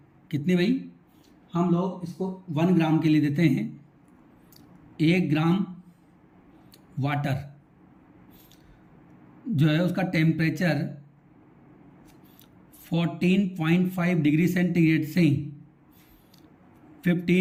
कितनी भाई, हम लोग इसको 1 ग्राम के लिए देते हैं। 1 ग्राम वाटर जो है उसका टेम्परेचर 14.5 डिग्री सेंटीग्रेड से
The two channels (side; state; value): both; identical; correlation 1.00